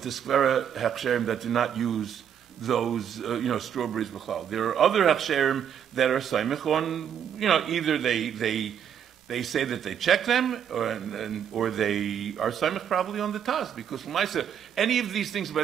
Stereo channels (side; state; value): left; quieter; 8.7 dB